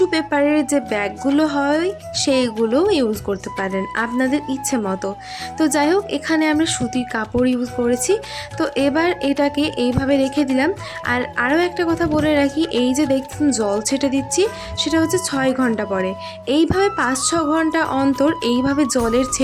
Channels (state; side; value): identical; both; correlation 1.00